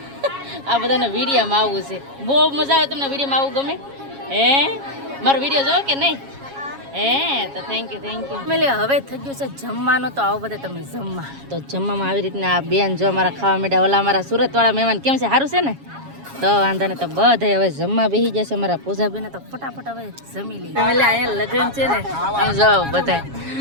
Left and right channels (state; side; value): late; left; 7.3 ms